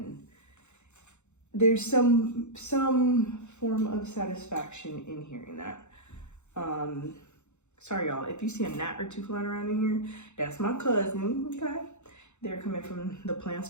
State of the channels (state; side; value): late; right; 0.83 ms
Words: there's some form of satisfaction in hearing that. Sorry y'all, if you see a gnat or two flying around in here, that's my cousin, okay? They're coming from the plants